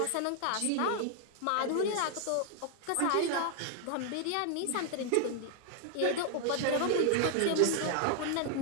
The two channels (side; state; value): both; different; correlation 0.00